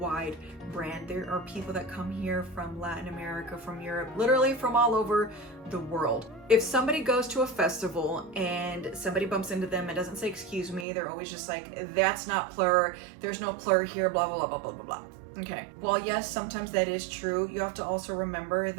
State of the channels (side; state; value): left; drops out; at 10.9 s